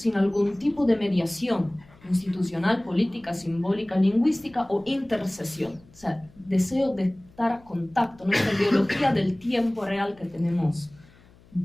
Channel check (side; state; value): left; noise; hum, 27 dB below the sound